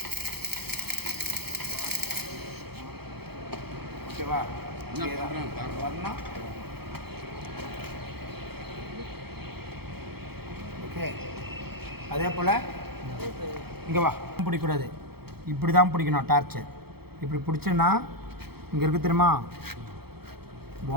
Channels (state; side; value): late; left; 0.96 ms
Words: ஓகேவா? வரணும். ஓகே, அதே போல் இங்கே வா, பிடிக்கக்கூடாது, இப்படி தான் பிடிக்கணும். டார்ச்சு இப்படி பிடிச்சேன்னா இங்கே இருக்குது தெரியுமா?